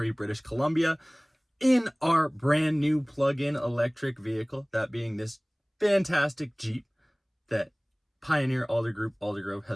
British Columbia, in our brand new plug-in electric vehicle, that being this fantastic Jeep that Pioneer Aldergrove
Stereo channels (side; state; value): both; identical; correlation 1.00